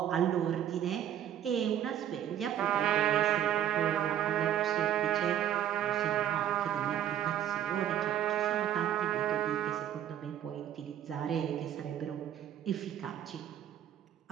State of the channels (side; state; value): left; quieter; 10.5 dB